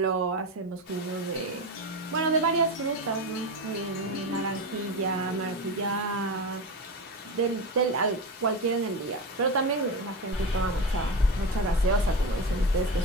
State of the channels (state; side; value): normal; both; correlation 0.21